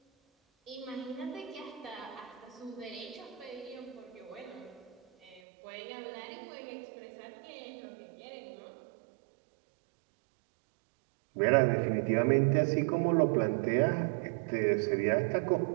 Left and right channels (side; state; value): left; drops out; at 5.4 s